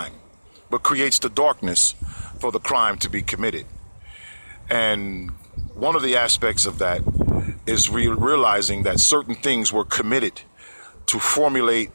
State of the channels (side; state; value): both; inverted; correlation -1.00